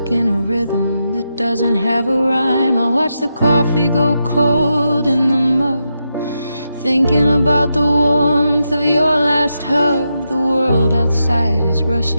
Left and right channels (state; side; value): inverted; both; correlation -0.85